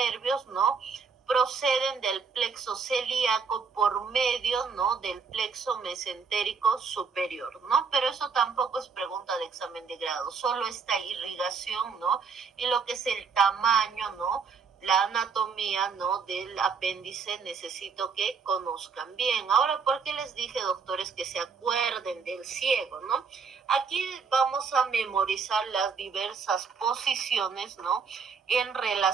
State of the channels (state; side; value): quieter; left; 5.5 dB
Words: ¿no? Proceden del plexo celíaco por medio, ¿no? Del plexo mesentérico superior, ¿no? Pero eso tampoco es pregunta de examen de grado, solo esta irrigación, ¿no? Y lo que es el tamaño, ¿no? La anatomía, ¿no? Del apéndice necesito que conozcan bien. Ahora, ¿por qué les dije, doctores, que se acuerden del ciego, ¿no? Aquí vamos a memorizar las diversas posiciones, ¿no? En